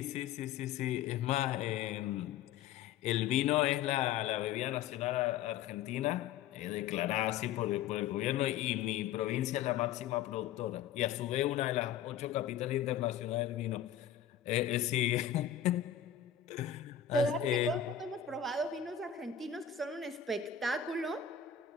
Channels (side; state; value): right; quieter; 9.1 dB